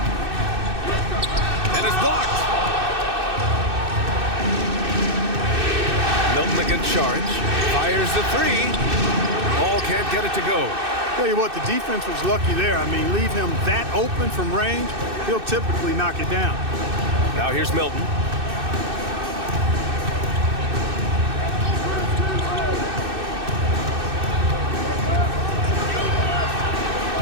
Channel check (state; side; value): late; left; 2.6 ms